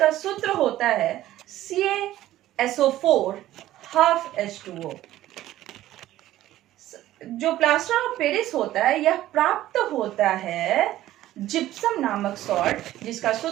सूत्र होता है CaSO4 जो प्लास्टर ऑफ पेरिस होता है यह प्राप्त होता है जिप्सम नामक सॉल्ट, जिसका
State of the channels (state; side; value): quieter; left; 14.3 dB